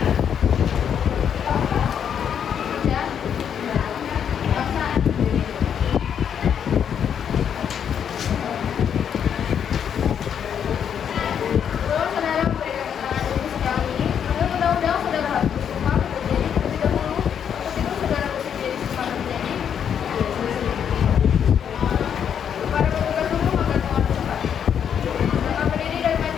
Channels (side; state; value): right; quieter; 8.3 dB